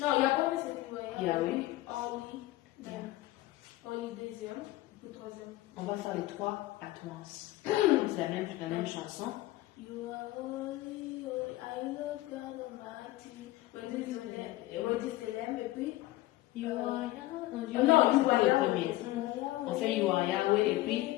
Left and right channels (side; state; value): right; quieter; 17.3 dB